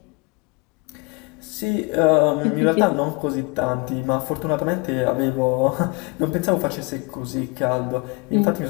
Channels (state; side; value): quieter; right; 29.1 dB